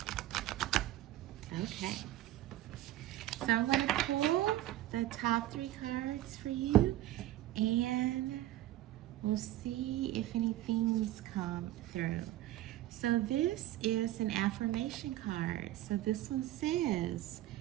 Okay. So I'm going to pull the top 3 cards for you, and we'll see if anything's come through. So this is an affirmation card. So this one says,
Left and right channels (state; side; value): quieter; left; 14.7 dB